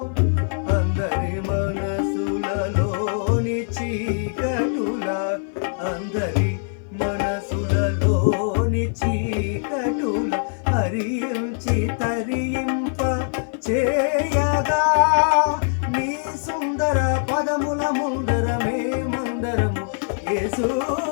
అందరి మనసులలోని చీకటుల, అందరి మనసులలోని చీకటుల హరించి తరింప చేయగా నీ సుందర పదముల ముందర మేమందరము యేసు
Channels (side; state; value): right; silent; 57 dB below the other